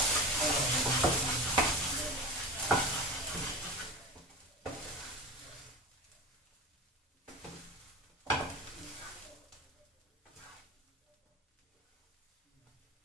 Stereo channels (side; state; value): both; normal; correlation 0.28